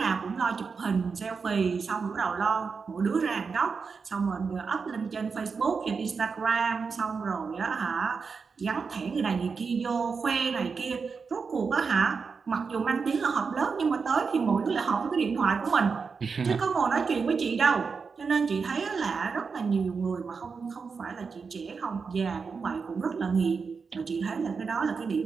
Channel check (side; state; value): left; quieter; 5.2 dB